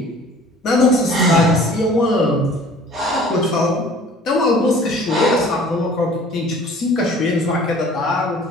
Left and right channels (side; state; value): both; normal; correlation 0.49